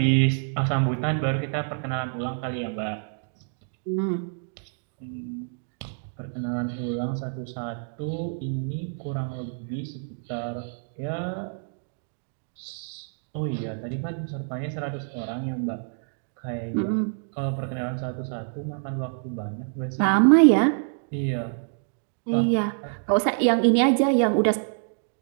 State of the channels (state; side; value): silent; left; digital silence